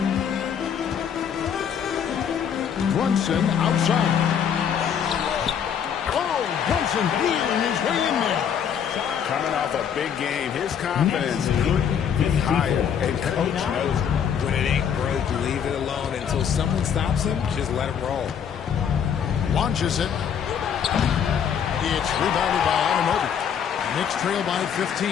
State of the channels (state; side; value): quieter; right; 8.0 dB